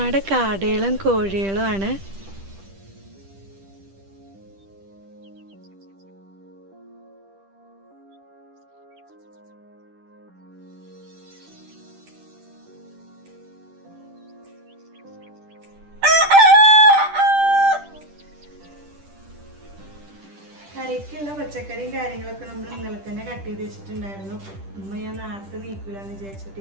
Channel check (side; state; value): left; late; 10 ms